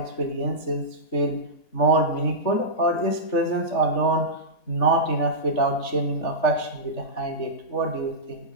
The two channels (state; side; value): late; right; 3.5 ms